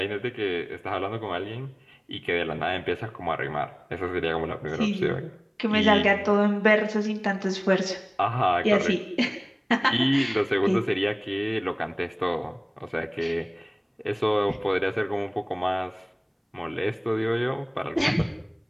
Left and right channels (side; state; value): both; identical; correlation 1.00